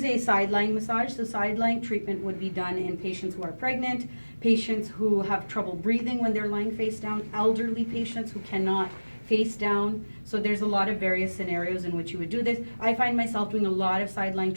a Sidelying massage. So Sidelying treatment would be done in patients who are pregnant, patients who have trouble breathing when they're lying face down, elderly patients who cannot face down. So there's a lot of various scenarios in which you would do this. I find myself doing a lot of Sidelying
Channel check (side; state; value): both; inverted; correlation -1.00